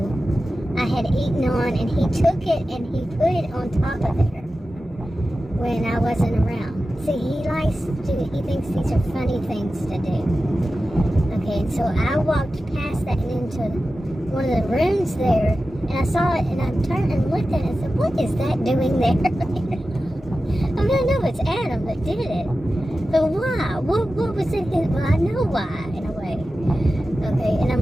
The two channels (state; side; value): normal; both; correlation 0.93